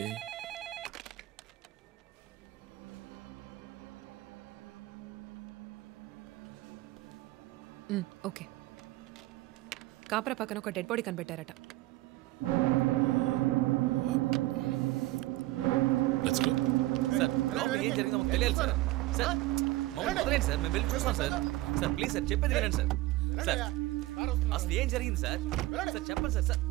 ఓకే. కాపరా పక్కన ఒక డెడ్ బాడీ కనిపెట్టారట. Let's go. సార్ లోపల ఏం జరిగిందో మాకు తెలియాలి సార్. సార్ మమ్మల్ని వదిలేండి సార్, మేము వెళ్ళి చూస్తాం సార్. సార్ ప్లీజ్ సార్, చెప్పేది వినండి సార్. సార్ అసలు ఏం జరిగింది సార్? సార్ చెప్పండి sir. Sir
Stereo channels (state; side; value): quieter; left; 18.4 dB